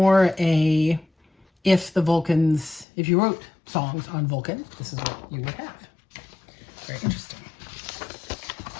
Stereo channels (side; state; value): right; drops out; at 2.9 s